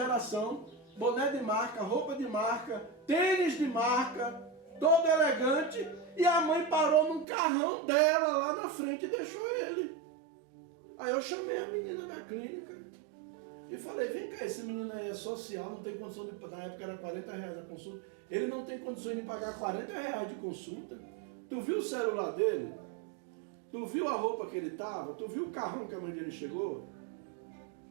boné de marca, roupa de marca, tênis de marca, todo elegante, e a mãe parou num carrão dela lá na frente e deixou ele. Aí eu chamei a menina da clínica e falei, vem cá, esse menino aí é social, não tem condição de, na época era R$40 a consulta, ele não tem condições de pagar R$40 de consulta. Tu viu o celular dele? Tu viu a roupa que ele estava? Tu viu o carrão que a mãe dele chegou?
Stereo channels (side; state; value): left; drops out; at 7.2 s